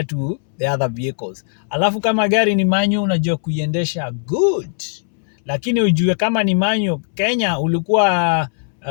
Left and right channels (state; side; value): silent; right; 67 dB below the other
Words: to the other vehicles. Alafu kama gari ni manual, unajua kuiendesha good, lakini ujue kama ni manual, Kenya ulikuwa